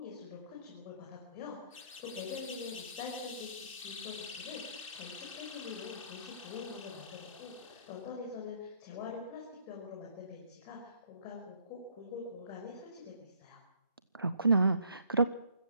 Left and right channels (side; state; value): both; inverted; correlation -0.64